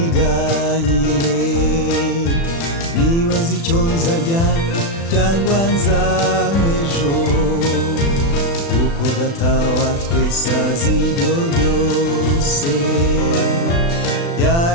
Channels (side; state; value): right; late; 36 ms